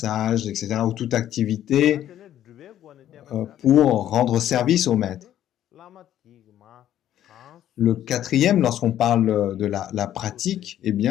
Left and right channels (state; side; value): quieter; right; 11.7 dB